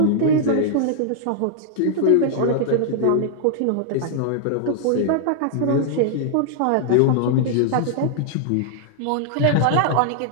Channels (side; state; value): both; different; correlation -0.01